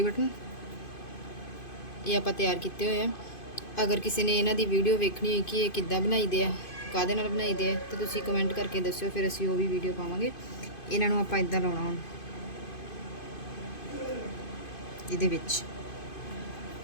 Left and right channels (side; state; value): right; late; 2.5 ms